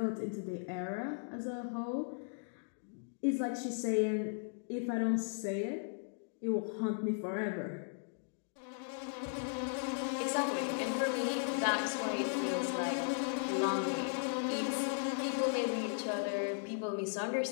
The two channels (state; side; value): silent; right; digital silence